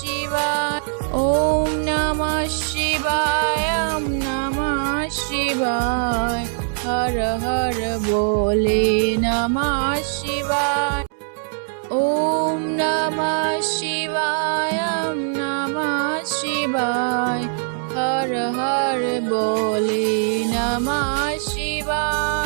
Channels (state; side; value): silent; left; digital silence